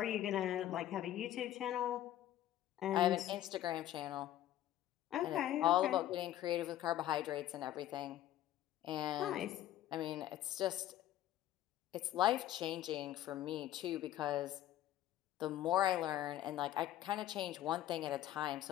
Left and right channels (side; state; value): right; quieter; 13.0 dB